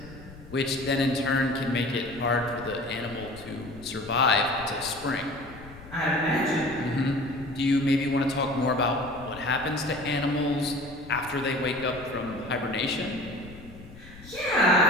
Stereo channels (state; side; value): noise; left; rumble, 18 dB below the sound